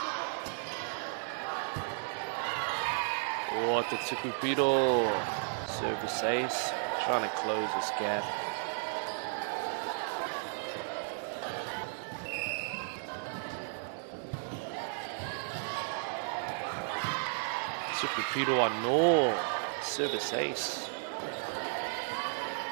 Oh, te Tukupiro, service ace, trying to close this gap. Tukupiro ano, service ace.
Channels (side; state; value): left; silent; digital silence